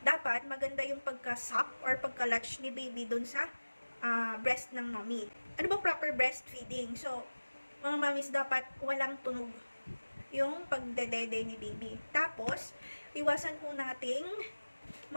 dapat maganda yung pagka-suck or pagka-latch ni baby dun sa breast ng mommy. Ano bang proper breastfeeding? So, mga mommies, dapat walang tunog yung pagdedede ni baby. Tapos, iwasan po nating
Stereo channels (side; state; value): both; inverted; correlation -1.00